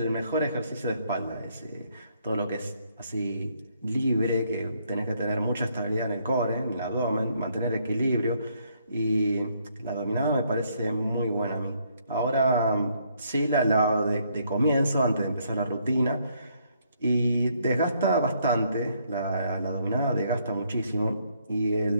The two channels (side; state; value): both; inverted; correlation -0.70